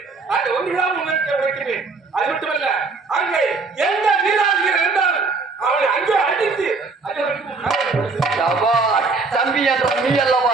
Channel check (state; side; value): quieter; left; 4.1 dB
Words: அது ஒன்றுதான் உங்களுக்கு வைக்கிறேன். அது மட்டுமல்ல அங்கே எந்த வீராதிகள் இருந்தாலும் அவனை அங்கே அடித்து தம்பி என்ற நீ அல்லவா